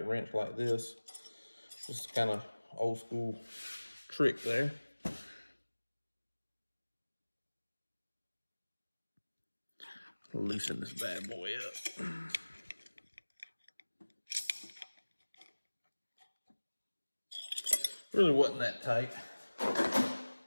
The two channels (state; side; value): inverted; both; correlation -1.00